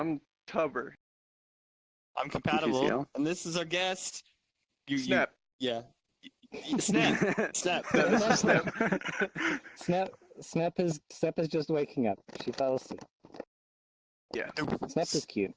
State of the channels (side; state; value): both; identical; correlation 1.00